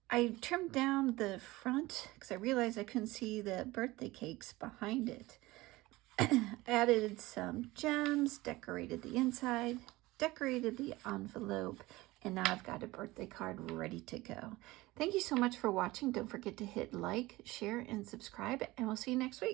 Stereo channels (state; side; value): quieter; left; 19.7 dB